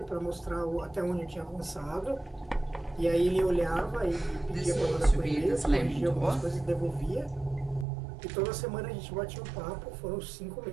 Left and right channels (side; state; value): left; drops out; at 7.9 s